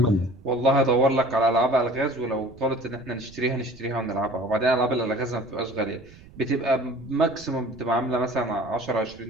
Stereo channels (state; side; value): noise; right; rumble, 22 dB below the sound